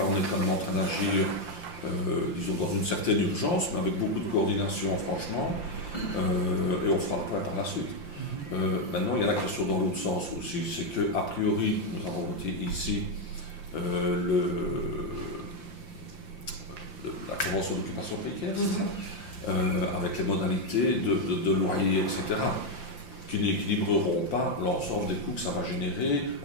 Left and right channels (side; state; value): right; late; 5.8 ms